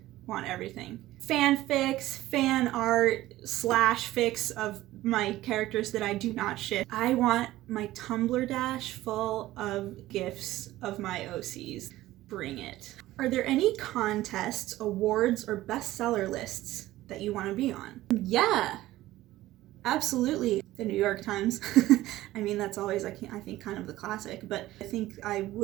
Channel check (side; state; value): left; quieter; 16.0 dB